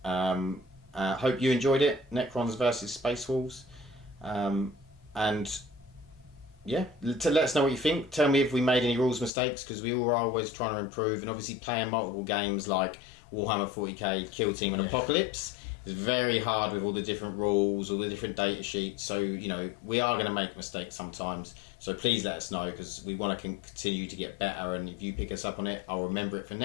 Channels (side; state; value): right; drops out; at 9.3 s